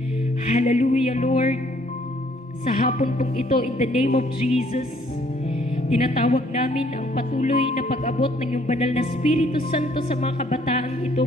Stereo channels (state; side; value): normal; both; correlation 0.63